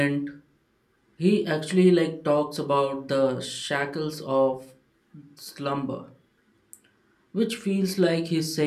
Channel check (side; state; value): both; identical; correlation 1.00